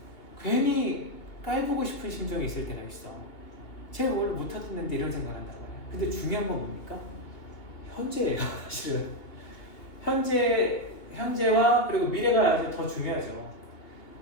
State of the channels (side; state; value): right; late; 2.7 ms